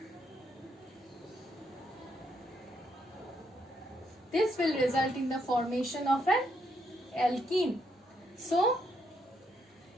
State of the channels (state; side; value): normal; both; correlation 0.76